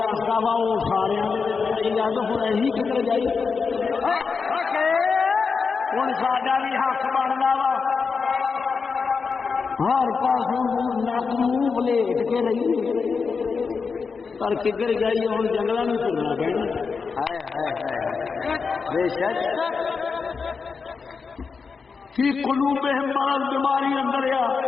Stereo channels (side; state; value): right; quieter; 5.2 dB